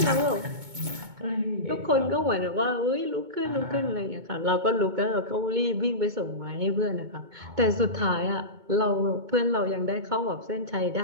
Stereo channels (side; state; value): left; late; 2.2 ms